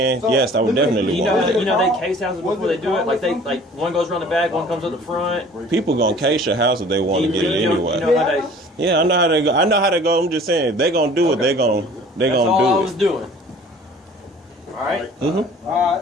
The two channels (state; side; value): normal; both; correlation 0.49